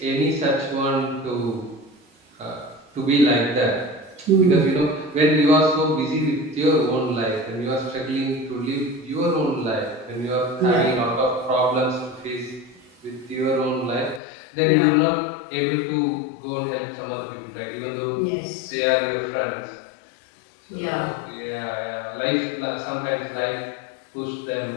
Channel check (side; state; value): right; drops out; at 14.2 s